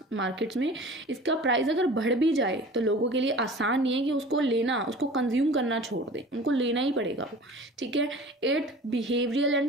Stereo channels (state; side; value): normal; both; correlation 0.41